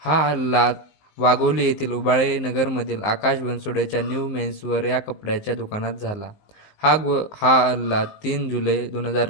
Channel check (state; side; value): late; right; 19 ms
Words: हा हल्ला वाघोली येथील उबाळे नगरमधील आकाश बनसोडेच्या न्यू मेन्सवेअर या कपड्याच्या दुकानात झाला. हा हल्ला 3 जुलै